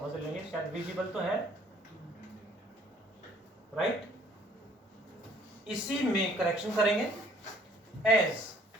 लेंगे, शायद विजिबल तो है, राइट। इसी में करेक्शन करेंगे, एज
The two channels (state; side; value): normal; both; correlation 0.59